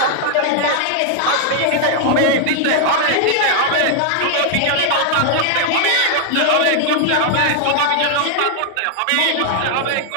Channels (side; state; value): both; different; correlation 0.00